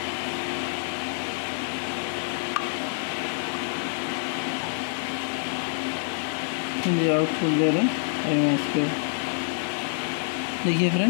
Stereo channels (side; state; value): right; silent; digital silence